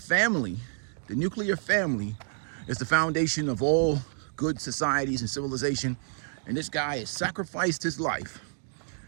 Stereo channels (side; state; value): left; silent; digital silence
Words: the nuclear family, is the foundation of all good societies and civilization. And this guy has sacrificed his life.